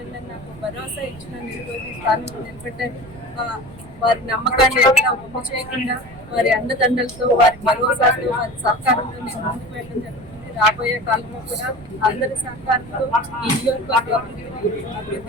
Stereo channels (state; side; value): noise; right; rumble, 19 dB below the sound